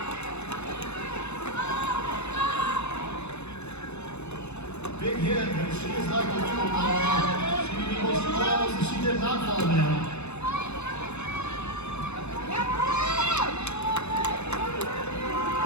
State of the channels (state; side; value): late; right; 0.81 ms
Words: Big hit, but she is like a little ball. She falls and she did not fall down.